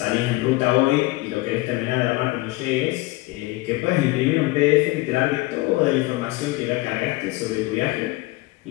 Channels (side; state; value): right; quieter; 20.6 dB